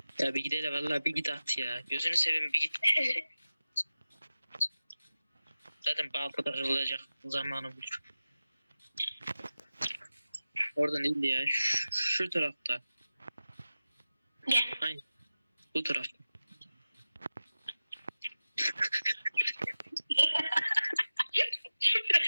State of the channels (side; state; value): both; inverted; correlation -0.95